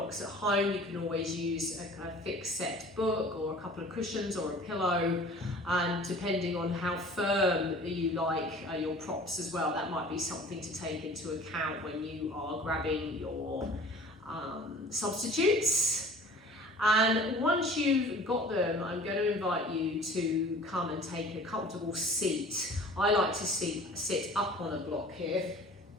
at home, you can always use a fixed set book or a couple of cushions or a pillow. And depending on how firm you like your props as well, that might be something to take into account when you are grabbing your substitutes. And once you've got them, I'm going to invite you to come and take a comfortable seat. I like to sit up on a block here,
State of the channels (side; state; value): both; normal; correlation 0.46